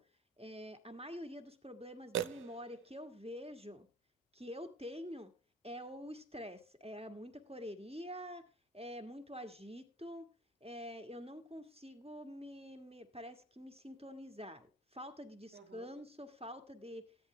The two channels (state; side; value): normal; both; correlation 0.44